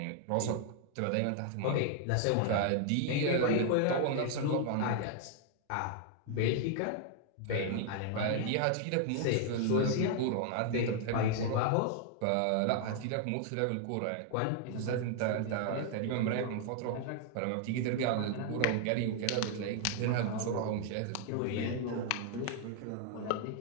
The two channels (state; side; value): different; both; correlation 0.00